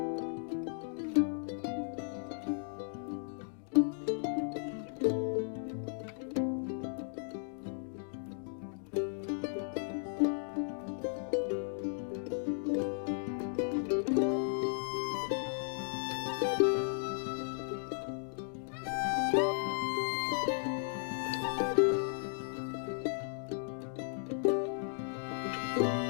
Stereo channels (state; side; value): silent; right; digital silence